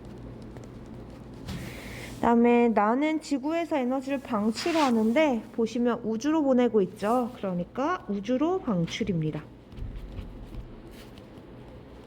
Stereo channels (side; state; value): both; identical; correlation 1.00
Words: 그 다음에 나는 지구에서 에너지를 방출하는데 보시면 우주로 보내고 있죠. 그러니까 우주로 방출입니다.